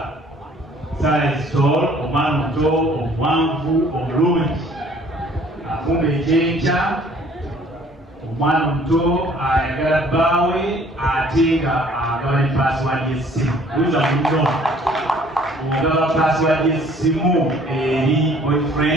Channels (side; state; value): both; normal; correlation 0.56